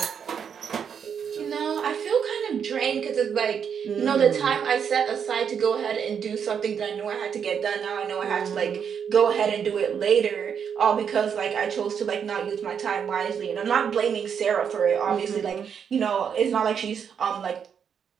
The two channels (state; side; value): quieter; left; 7.4 dB